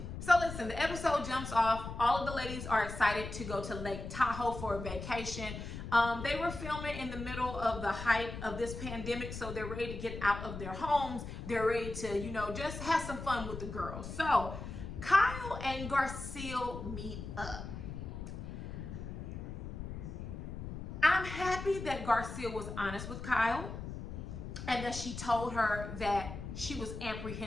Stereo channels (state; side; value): noise; left; rumble, 8 dB below the sound